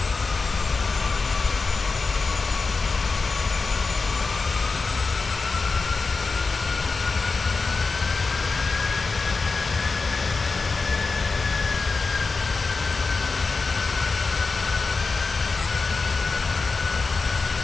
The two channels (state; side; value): quieter; right; 4.3 dB